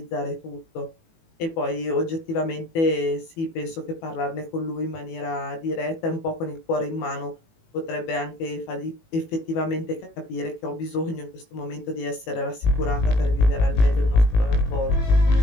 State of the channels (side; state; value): right; late; 18 ms